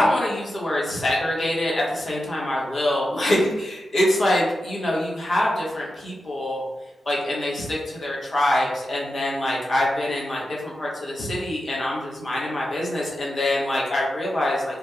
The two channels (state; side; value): normal; both; correlation 0.90